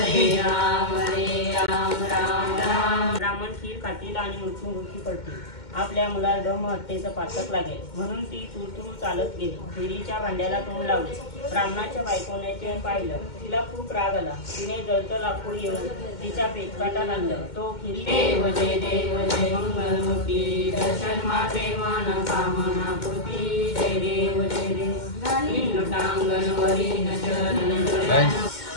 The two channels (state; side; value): late; right; 2.2 ms